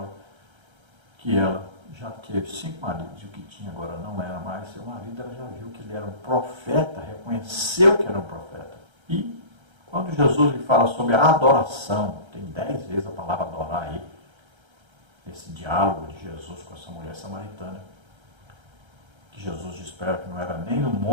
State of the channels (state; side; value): late; left; 1.3 ms